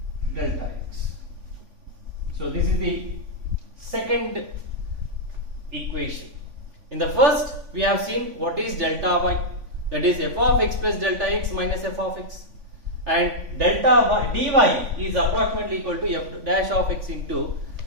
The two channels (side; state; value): left; late; 3.5 ms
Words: delta x. So this is the second equation. In the first, we have seen what is delta y, that is f of x plus delta x minus f of x, and delta y dy is approximately equal to f dash of x into